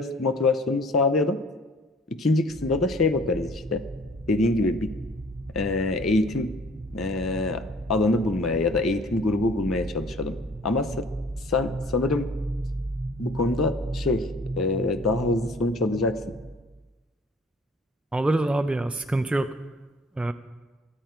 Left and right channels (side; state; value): both; normal; correlation 0.53